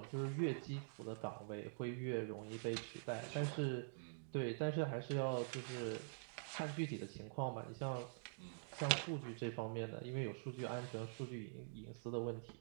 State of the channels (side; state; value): left; silent; digital silence